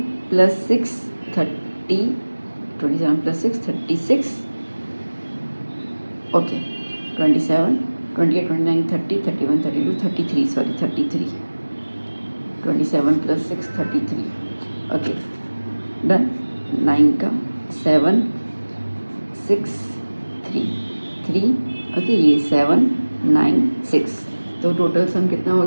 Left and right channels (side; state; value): both; inverted; correlation -1.00